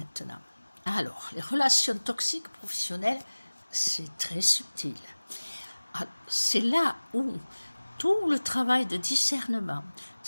Alors, les relations toxiques professionnelles, c'est très subtil. C'est là où tout le travail de discernement,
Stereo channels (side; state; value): both; inverted; correlation -1.00